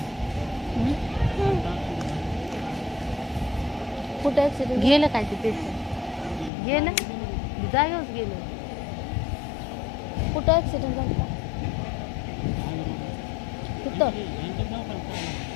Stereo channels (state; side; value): drops out; right; at 6.5 s